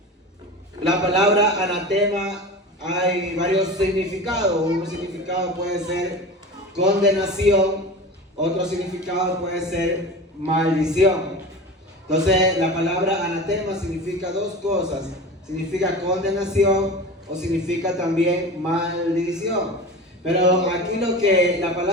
La palabra anatema hay varios significados. Un significado puede ser condenación, otro significado puede ser maldición. Entonces la palabra anatema significa dos cosas. Significa condenación o significa también maldición. Pero aquí lo que la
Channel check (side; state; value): both; normal; correlation 0.32